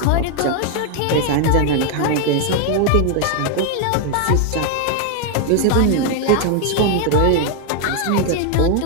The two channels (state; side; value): different; both; correlation 0.00